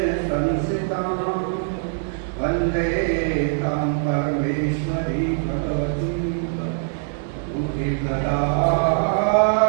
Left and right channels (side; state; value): left; silent; digital silence